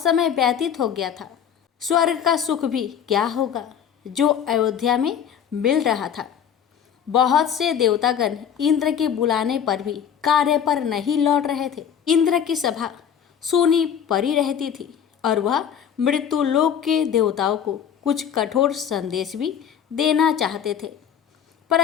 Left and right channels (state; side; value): quieter; right; 8.5 dB